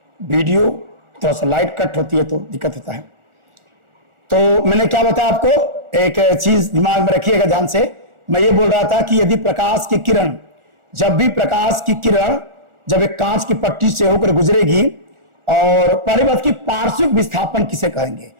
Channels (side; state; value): left; late; 1.4 ms